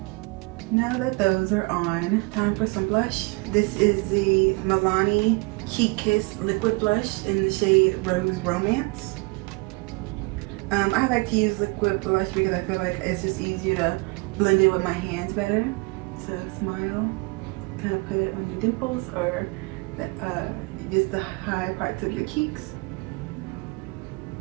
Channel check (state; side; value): quieter; left; 28.0 dB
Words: now that those are on, time for some blush. This is the Milani Heat Kiss Liquid Blush in the shade Rose Romance. I like to use liquid blush because I feel like it's just easier to blend it with my hands better. So smile, kind of put it on your dimples or just the high parts of your cheeks.